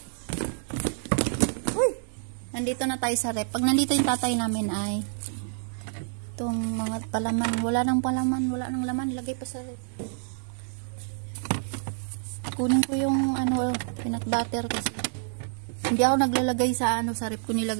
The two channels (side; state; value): left; silent; 59 dB below the other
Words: Uy! Nandito na tayo sa rep. Pag nandito yung tatay namin ay itong mga palaman. Wala nang palaman, wala nang laman. Ilagay pa sa rep. Kunin ko yung peanut butter kasi. Hindi ako naglalagay sa sa rep ko